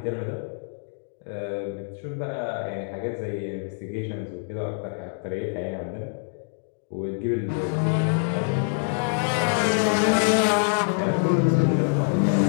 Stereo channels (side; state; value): right; silent; 57 dB below the other